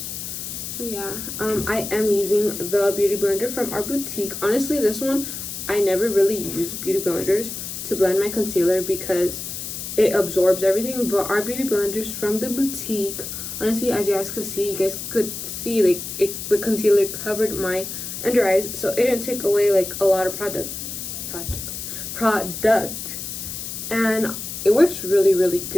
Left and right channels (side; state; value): left; noise; hiss, 7 dB below the sound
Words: So yeah, I am using the beauty blender from our boutique. Honestly, this one I never really use beauty blenders to blend my concealer because it absorbs everything, but our beauty blenders from the boutique, honestly, as you guys could see, like the concealer covered my under eyes, so it didn't take away like a lot of product, and it works really